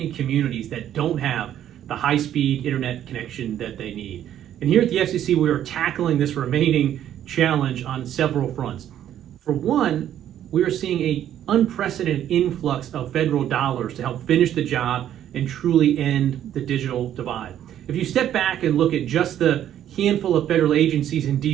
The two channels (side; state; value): left; quieter; 11.0 dB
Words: communities that don't have the high-speed internet connection that they need. And here at the FCC, we are tackling this remaining challenge on several fronts. For one, we are seeing an unprecedented influx of federal dollars to help finish the job and truly end the digital divide. If you step back and look at just the handful of federal agencies in